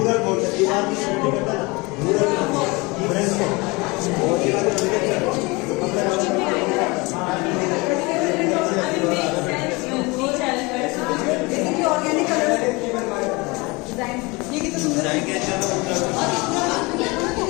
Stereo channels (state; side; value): quieter; right; 25.5 dB